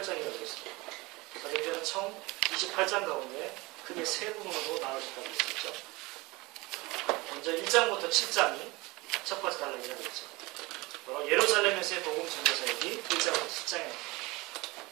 했습니다. 사도행전은 총 28장 가운데 크게 세 부분으로 나눠졌다고 했었죠. 먼저 1장부터 7장이 첫 번째 단락이라고 했죠. 바로 예루살렘에서의 복음 전도 사역이 1장부터 7장입니다.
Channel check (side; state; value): left; quieter; 23.1 dB